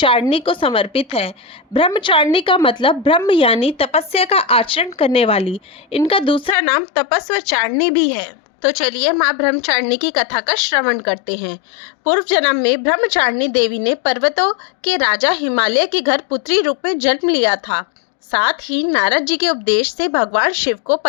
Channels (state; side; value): drops out; right; at 6.6 s